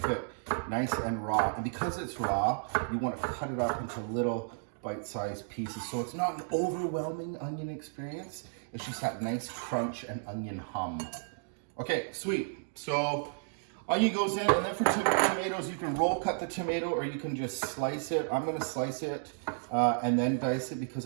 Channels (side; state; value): left; silent; digital silence